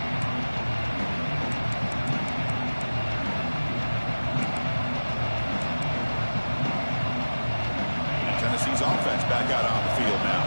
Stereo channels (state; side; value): inverted; both; correlation -1.00